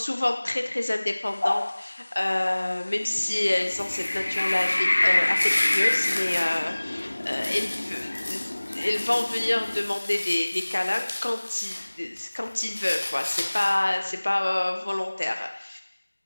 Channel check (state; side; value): inverted; both; correlation -1.00